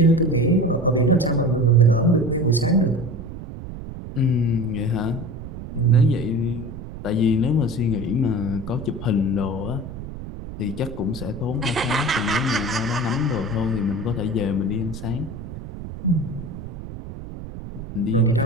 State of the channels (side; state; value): right; noise; rumble, 11 dB below the sound